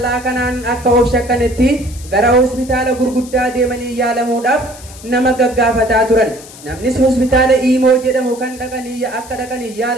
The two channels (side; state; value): left; noise; hiss, 18 dB below the sound